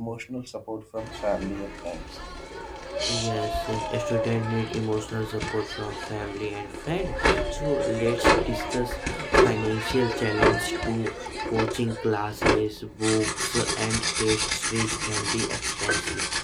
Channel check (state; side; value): identical; both; correlation 1.00